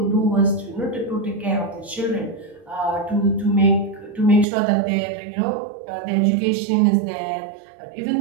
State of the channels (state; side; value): drops out; left; at 4.5 s